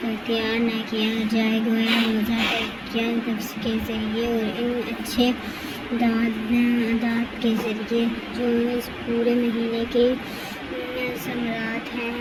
کا اختیار نہ کیا جائے۔ گویا روزہ کیا نفس کے ذریعے اور ان اچھے عادات کے ذریعے جو اس پورے مہینے کے ثمرات ہیں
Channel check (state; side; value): identical; both; correlation 1.00